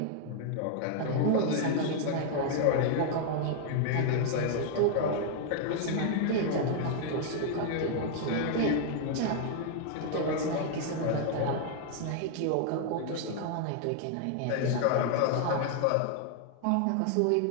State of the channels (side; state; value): both; different; correlation 0.00